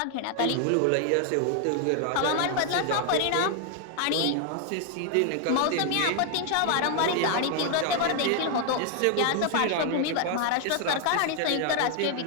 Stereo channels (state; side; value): different; both; correlation 0.00